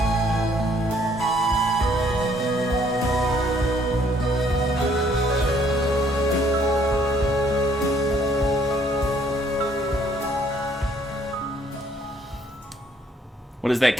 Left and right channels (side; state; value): both; normal; correlation 0.64